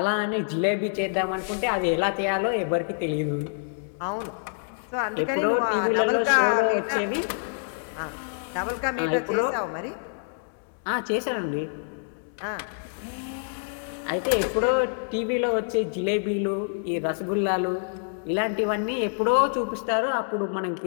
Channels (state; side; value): silent; right; digital silence